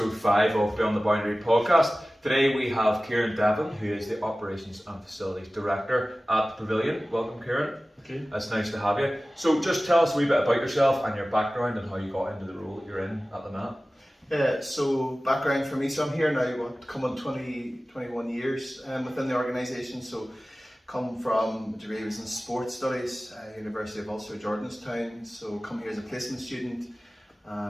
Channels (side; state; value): both; normal; correlation 0.97